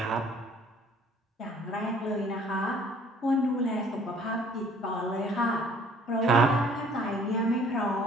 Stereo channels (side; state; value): both; normal; correlation 0.57